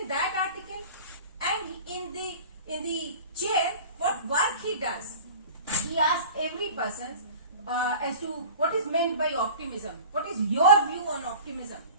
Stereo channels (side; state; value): both; inverted; correlation -0.40